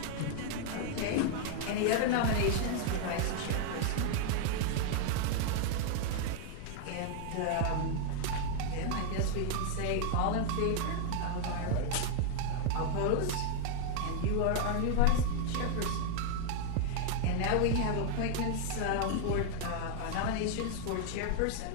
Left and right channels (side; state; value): both; different; correlation 0.00